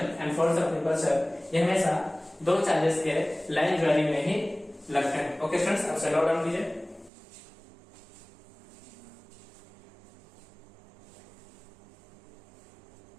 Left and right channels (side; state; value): left; drops out; at 7.1 s